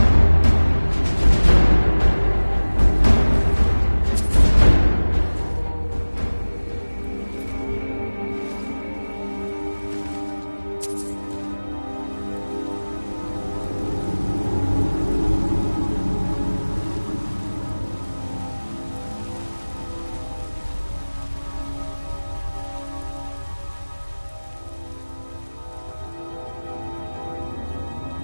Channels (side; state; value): both; inverted; correlation -1.00